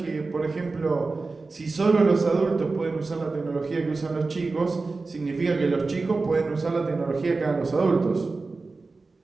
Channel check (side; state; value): left; quieter; 3.8 dB